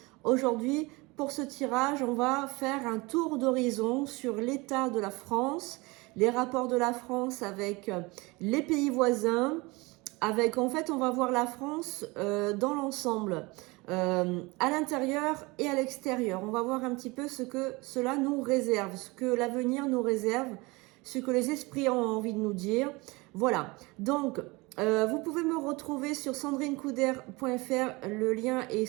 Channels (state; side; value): quieter; left; 24.4 dB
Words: aujourd'hui. Pour ce tirage, on va faire un tour d'horizon sur l'état de la France, les rapports de la France avec les pays voisins. En fait, on va voir la France dans l'ensemble, à l'intérieur et à l'extérieur. On va voir un petit peu ce que cela nous réserve, ce que l'avenir nous réserve, ce que les esprits ont envie de nous dire. Voilà. Donc, vous pouvez me retrouver sur sandrinecouder.fr. Le lien est